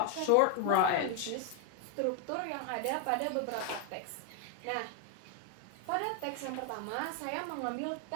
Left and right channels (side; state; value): both; different; correlation 0.01